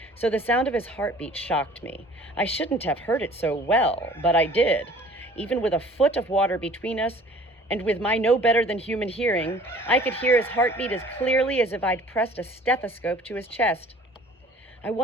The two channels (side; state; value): both; normal; correlation 0.50